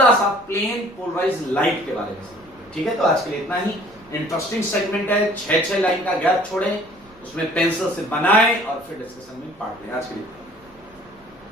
सा प्लेन पोलराइज्ड लाइट के बारे में सीखेंगे, ठीक है। तो आज के लिए इतना ही। इंटरेस्टिंग सेगमेंट है, 6 लाइन का गैप छोड़ें, उसमें पेंसिल से बनाएं और फिर डिस्कशन में पार्ट लें। आज के लिए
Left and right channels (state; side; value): noise; right; rumble, 28 dB below the sound